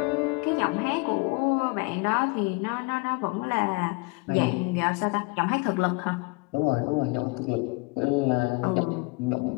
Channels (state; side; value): quieter; right; 28.0 dB